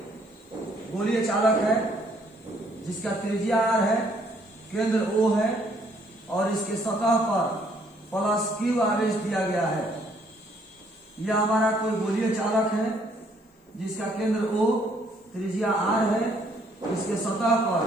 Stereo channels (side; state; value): both; normal; correlation 0.66